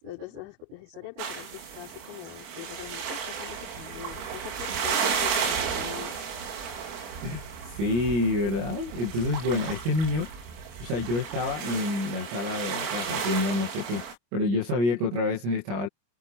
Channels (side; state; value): left; late; 25 ms